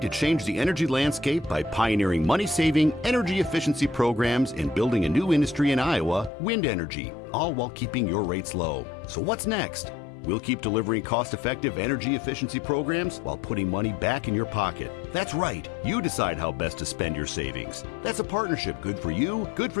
to change the energy landscape by pioneering money-saving, energy efficiency programs and building a new industry in Iowa, wind energy, all while keeping your rates low. So what's next? We'll keep delivering cost-effective energy efficiency programs while putting money back in your pocket. That's right, you decide how best to spend your savings. That's a partnership good for you, good for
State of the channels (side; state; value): right; drops out; at 6.3 s